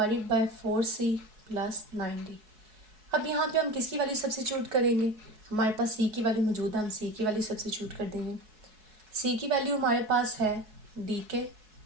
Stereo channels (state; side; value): late; left; 4.7 ms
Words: by 4c plus 9d। अब यहाँ पे हम किसकी वैल्यू सब्स्टिट्यूट करेंगे? हमारे पास c की वैल्यू मौजूद है, हम c की वैल्यू सब्स्टिट्यूट कर देंगे। c की वैल्यू हमारे पास है डी के